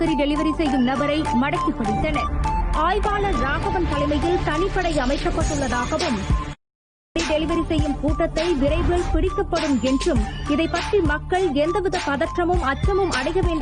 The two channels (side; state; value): both; identical; correlation 1.00